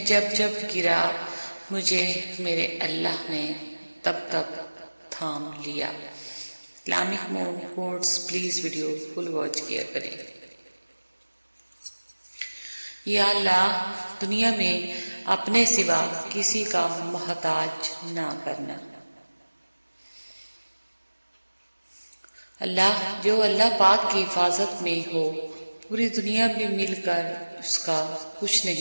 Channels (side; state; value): both; inverted; correlation -1.00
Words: جب گرا مجھے میرے اللہ نے تب تھام لیا۔ Islamic mom quotes please video full watch کیا کریں۔ یا اللہ، دنیا میں اپنے سوا کسی کا محتاج نہ کرنا۔ اللہ، جو اللہ پاک کی حفاظت میں ہو، پوری دنیا بھی مل کر اس کا کچھ